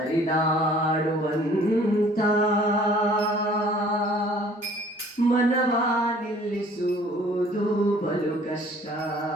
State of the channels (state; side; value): normal; both; correlation 0.54